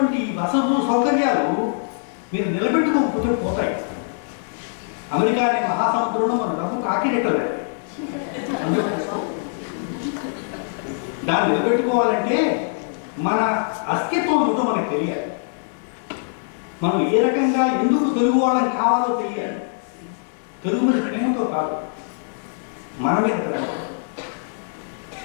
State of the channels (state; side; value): silent; right; digital silence